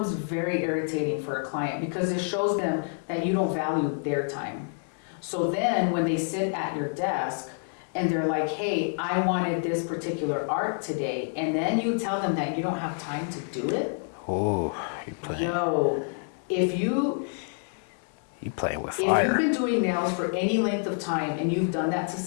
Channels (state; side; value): silent; right; 60 dB below the other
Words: very irritating for a client because it shows them that you don't value their time. So then when they sit at your desk and they're like, hey, I wanted this particular art today, and then you tell them that you don't have time to do it. Oh, if you playing with fire. If you've been doing nails for any length of time and you've done that to